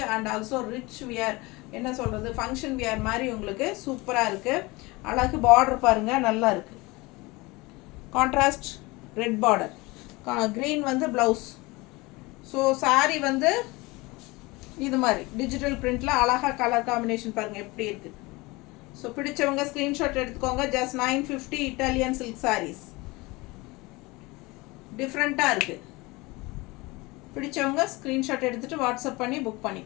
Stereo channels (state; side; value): quieter; right; 23.3 dB